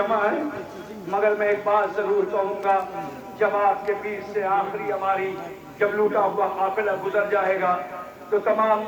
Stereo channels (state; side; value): identical; both; correlation 1.00